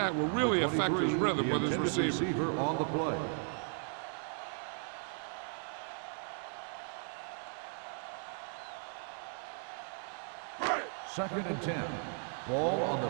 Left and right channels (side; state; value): left; silent; 54 dB below the other